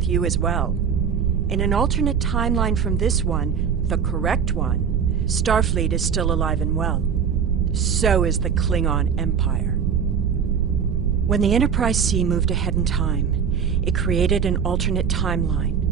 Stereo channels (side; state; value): left; quieter; 7.1 dB